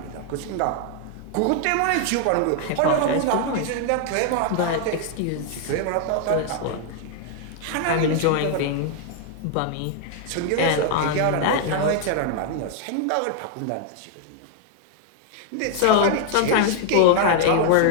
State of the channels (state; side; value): different; both; correlation 0.00